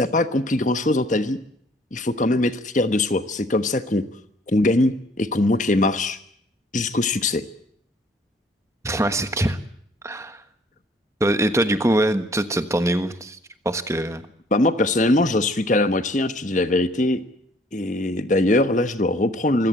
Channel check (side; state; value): both; normal; correlation 0.59